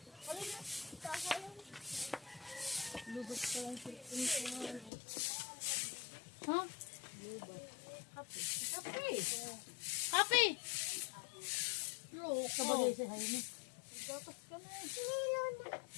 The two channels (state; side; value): drops out; right; at 4.9 s